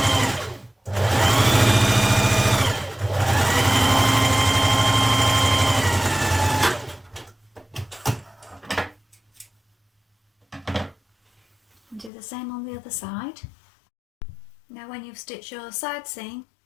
And do the same on the other side. Now when you've stitched your side seam,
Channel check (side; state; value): right; drops out; at 12.1 s